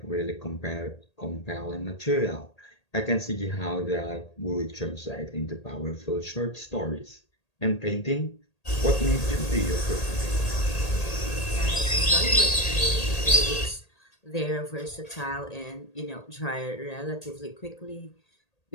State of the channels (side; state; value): right; late; 1.8 ms